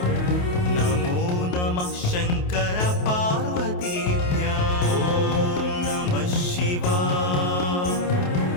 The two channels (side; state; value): right; late; 28 ms